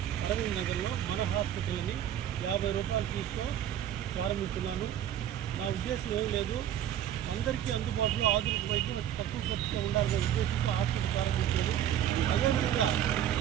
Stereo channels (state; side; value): quieter; left; 10.8 dB